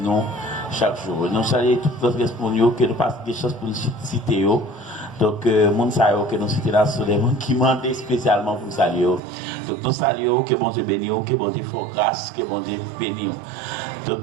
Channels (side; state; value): left; drops out; at 9.2 s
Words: nous chaque jour. Nous saluons toutes les responsables que nous passons des choses pour nous citer. Donc, mon salut que nous citons là sur les gens qui demandent spécialement pour nous saluer. Donc, nous saluons que bon Dieu bénisse, que bon Dieu fasse grâce, que bon Dieu bénisse.